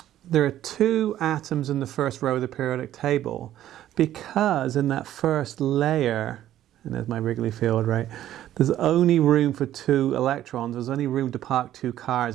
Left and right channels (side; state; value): left; quieter; 12.5 dB